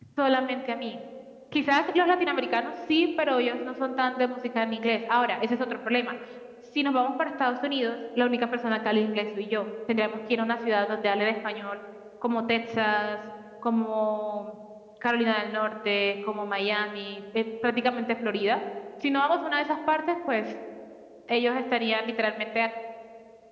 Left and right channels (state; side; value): identical; both; correlation 1.00